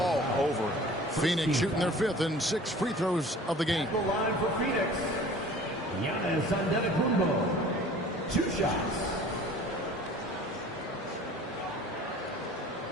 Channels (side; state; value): both; normal; correlation 0.46